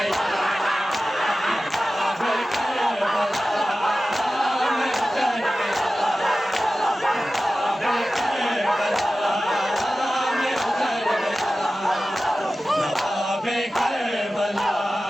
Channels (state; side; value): normal; both; correlation 0.95